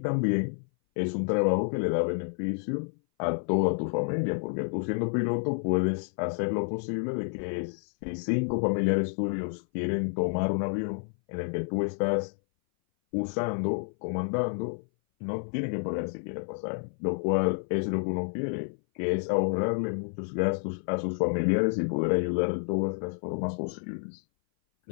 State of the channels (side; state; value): right; silent; 58 dB below the other